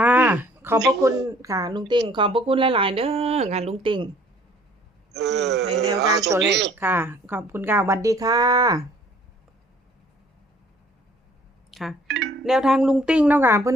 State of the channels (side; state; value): both; normal; correlation 0.57